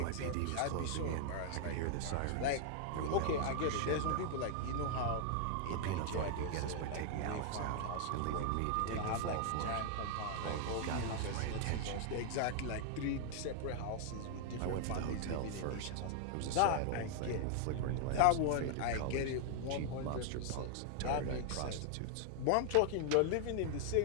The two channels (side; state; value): both; different; correlation 0.00